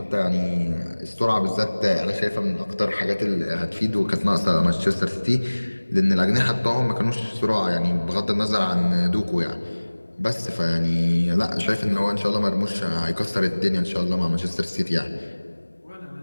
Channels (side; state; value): both; inverted; correlation -1.00